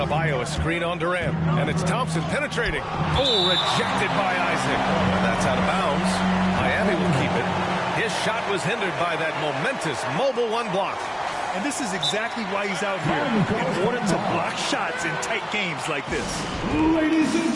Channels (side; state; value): both; identical; correlation 1.00